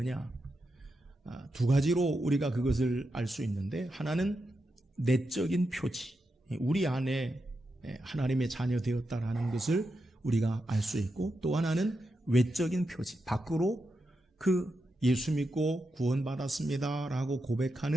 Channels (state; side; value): normal; both; correlation 0.87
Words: 두 가지로 우리가 그것을 알 수 있는데, 하나는 내적인 표지, 우리 안에 하나님의 자녀 되었다라는 것을 우리가 알 수 있고, 또 하나는 외적인 표지, 밖으로 그 예수 믿고 구원받았습니다 라고